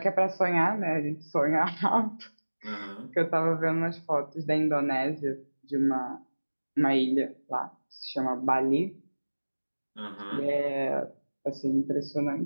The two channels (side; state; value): both; inverted; correlation -1.00